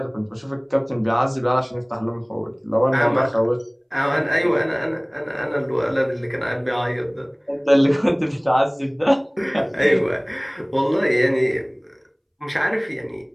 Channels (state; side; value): identical; both; correlation 1.00